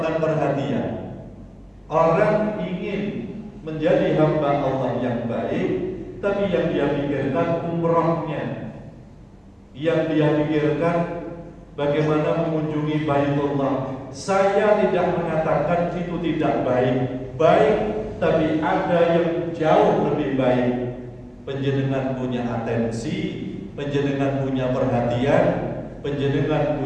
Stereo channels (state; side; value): identical; both; correlation 1.00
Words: perhatian. Orang ingin menjadi hamba Allah yang baik, tapi yang dia pikirkan umrohnya, yang dia pikirkan bagaimana mengunjungi Baitullah. Saya tidak mengatakan itu tidak baik, tapi ada yang jauh lebih baik. Panjenengan punya atensi, panjenengan punya perhatian, panjenengan